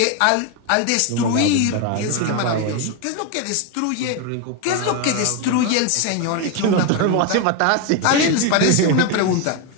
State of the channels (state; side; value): different; both; correlation 0.02